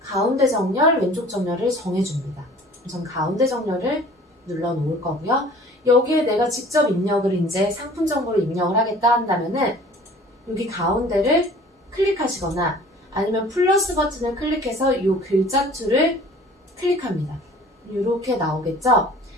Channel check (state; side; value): normal; both; correlation 0.49